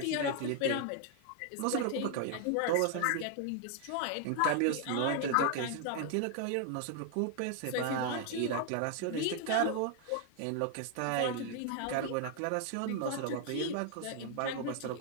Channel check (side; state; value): both; different; correlation 0.00